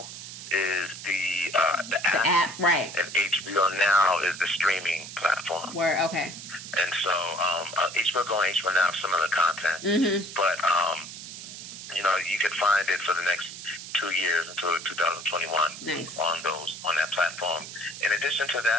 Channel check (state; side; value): noise; right; hiss, 11 dB below the sound